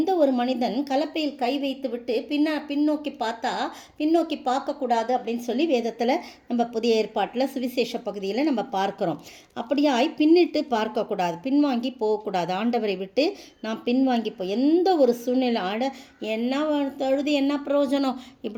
ஒரு மனிதன் கலப்பையில் கை வைத்து விட்டு பின்னோக்கி பார்க்கக்கூடாது அப்படின்னு சொல்லி வேதத்தில் நம்ம புதிய ஏற்பாட்டில் சுவிசேஷ பகுதியில் நம்ம பார்க்குறோம். அப்படியாய் பின்னிட்டு பார்க்கக்கூடாது, பின்வாங்கி போகக்கூடாது. ஆண்டவரை விட்டு நாம் பின்வாங்கி எந்த ஒரு சூழ்நிலை என்ன தொழுது என்ன பிரயோஜனம்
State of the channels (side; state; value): both; identical; correlation 1.00